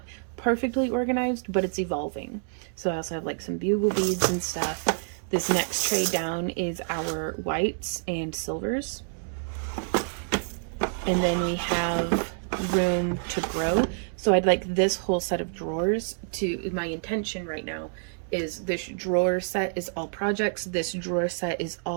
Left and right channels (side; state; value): left; silent; 60 dB below the other